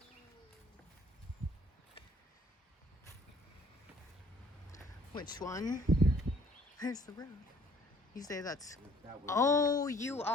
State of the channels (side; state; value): both; normal; correlation 0.58